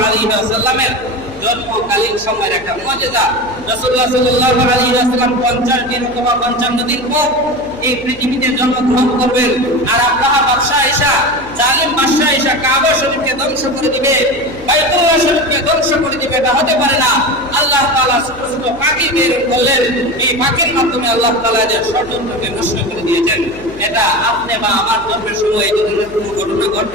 আলাইহি ওয়াসাল্লামের জন্মকালীন সময়ের একটা মুজিজা। রাসূলুল্লাহ সাল্লাল্লাহু আলাইহি ওয়াসাল্লাম 50 দিন অথবা 55 দিন পর এই পৃথিবীতে জন্মগ্রহণ করবেন। আর আব্রাহা বাদশাহ এসা, জালিম বাদশাহ এসা কাবা শরীফকে ধ্বংস করে দিবে, বাইতুল্লাহ শরীফকে ধ্বংস করে দিবে, এটা হতে পারে না। আল্লাহ তাআলা ছোট ছোট পাখি বের করলেন, এই পাখির মাধ্যমে আল্লাহ তাআলা এদের ষড়যন্ত্রকে নষ্ট করে দিয়েছেন। এটা আপনি বা আমার জন্মের সময় এই ধরনের কোনো ঘটনা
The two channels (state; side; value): noise; left; hum, 20 dB below the sound